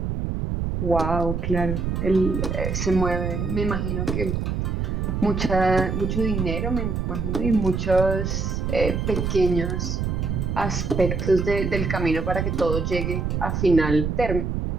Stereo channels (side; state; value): right; noise; rumble, 1 dB below the sound